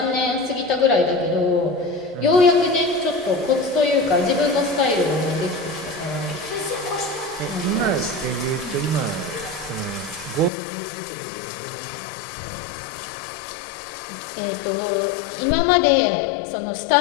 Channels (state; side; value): drops out; right; at 10.5 s